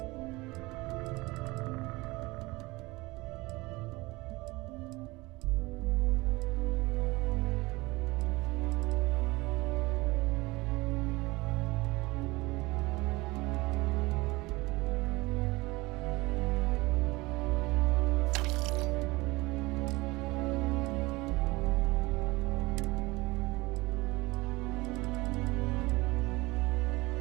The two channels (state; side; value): quieter; left; 22.1 dB